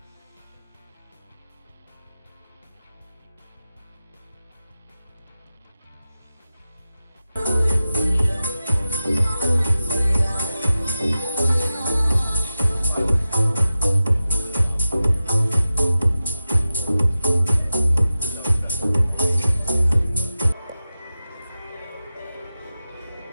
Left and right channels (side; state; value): both; inverted; correlation -0.94